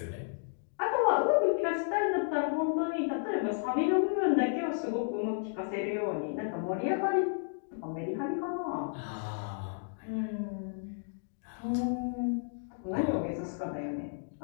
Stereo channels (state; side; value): silent; right; digital silence